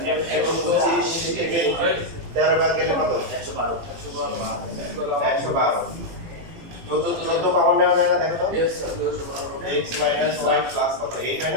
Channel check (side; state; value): left; late; 18 ms